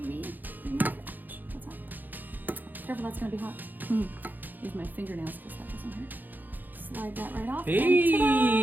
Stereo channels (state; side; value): late; left; 0.087 ms